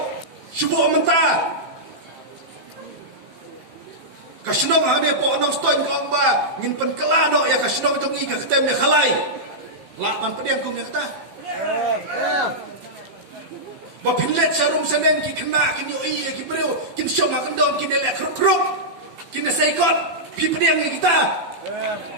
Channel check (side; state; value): left; late; 15 ms